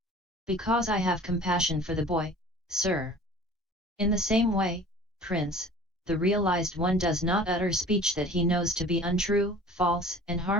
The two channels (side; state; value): both; normal; correlation 0.44